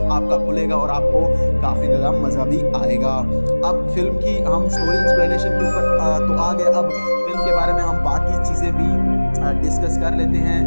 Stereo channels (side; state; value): both; inverted; correlation -1.00